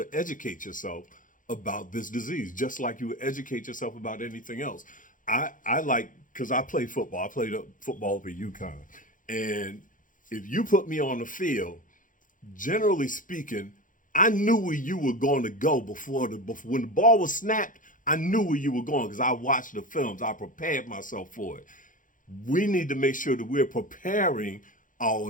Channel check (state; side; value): late; right; 0.38 ms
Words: educate yourself about this disease, just like you would educate yourself about anything else. I like, because I play football. I played football for UConn. And if you put me on the field, generally speaking, I knew where you were going to go before when the ball was snapped. I knew where you were going because I watched the films. I prepared myself for it. We need to make sure that we're preparing